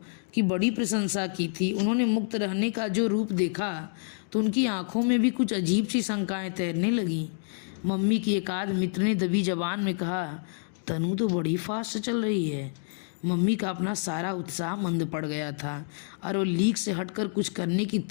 की बड़ी प्रशंसा की थी, उन्होंने मुक्त रहने का जो रूप देखा तो उनकी आंखों में भी कुछ अजीब सी शंकाएं तैरने लगीं। मम्मी की एक आध मित्र ने दबी जबान में कहा, तनु तो बड़ी फास्ट चल रही है। मम्मी का अपना सारा उत्साह मंद पड़ गया था, और वो लीक से हटकर कुछ करने की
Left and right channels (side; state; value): right; silent; digital silence